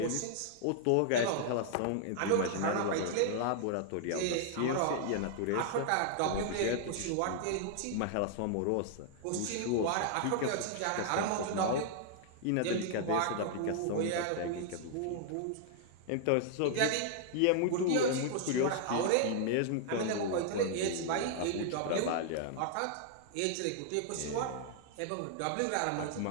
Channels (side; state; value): both; different; correlation 0.00